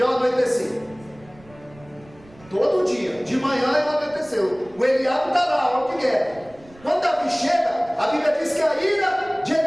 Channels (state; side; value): noise; right; rumble, 25 dB below the sound